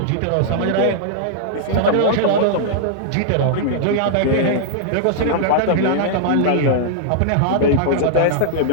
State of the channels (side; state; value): both; different; correlation -0.01